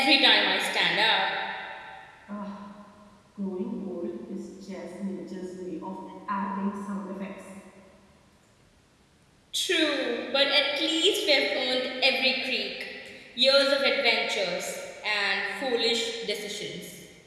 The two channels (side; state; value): both; identical; correlation 1.00